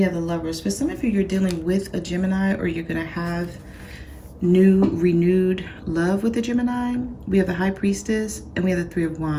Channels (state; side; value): identical; both; correlation 1.00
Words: have the Lovers. For some of you, you're dealing with a Gemini, or you're going to have new, renewed love with a Gemini. We have the High Priestess, and we have the Three of